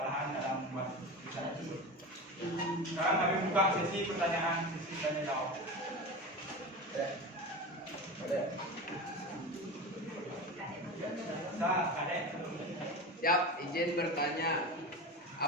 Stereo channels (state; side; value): normal; both; correlation 0.27